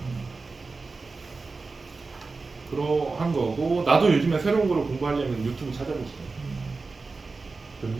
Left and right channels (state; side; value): quieter; left; 4.0 dB